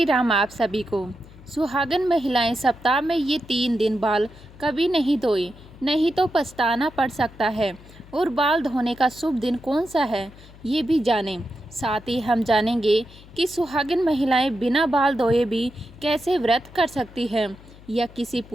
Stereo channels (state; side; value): noise; left; hum, 21 dB below the sound